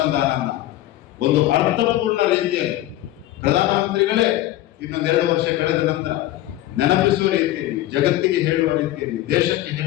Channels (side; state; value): right; quieter; 15.0 dB